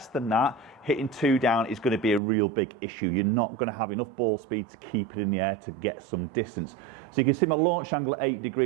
than that, hitting 2 down is going to be a real big issue. You're not going to have enough ball speed to keep it in the air to get some distance. So you can see my launch angle at 8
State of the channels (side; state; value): left; drops out; at 2.2 s